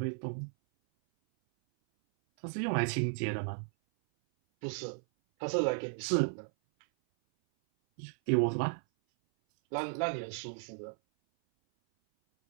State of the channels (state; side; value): silent; left; 55 dB below the other